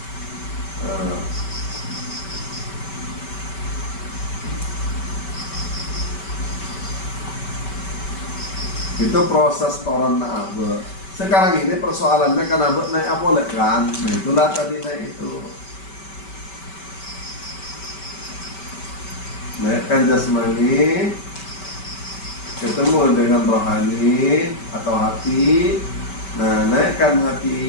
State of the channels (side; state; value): right; late; 5.2 ms